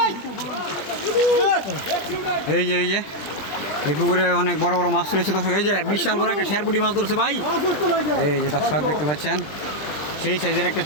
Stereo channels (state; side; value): late; right; 20 ms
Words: এই যে এই পুকুরে অনেক বড় বড় মাছ রয়েছে দর্শক। এই যে বিশাল বড় একটা শেরপুটি মাছ ধরছে ভাই, এই যে দর্শক দেখতে পাচ্ছেন সেই সাইজের একটা